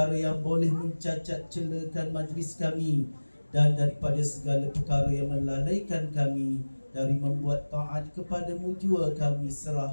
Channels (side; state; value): both; inverted; correlation -1.00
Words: yang boleh mencacat celakan majlis kami dan daripada segala perkara yang melalaikan kami dari membuat taat kepadamu jua kami